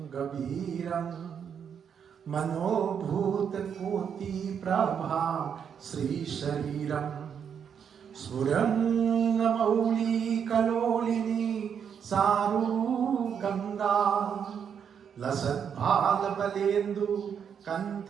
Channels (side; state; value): left; quieter; 7.6 dB